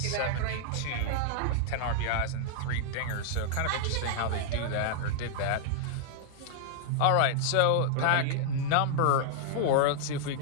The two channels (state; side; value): different; both; correlation -0.01